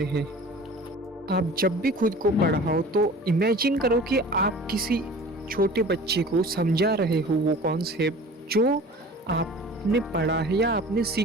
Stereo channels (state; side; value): normal; both; correlation 0.42